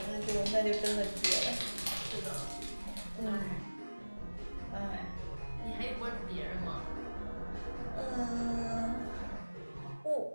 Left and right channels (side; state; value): both; inverted; correlation -1.00